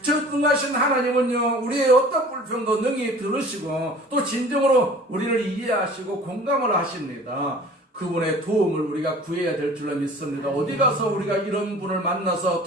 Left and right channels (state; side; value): normal; both; correlation 0.46